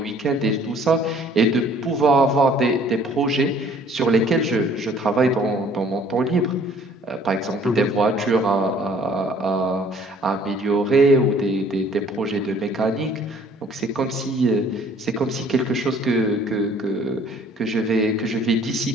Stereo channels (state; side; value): normal; both; correlation 0.56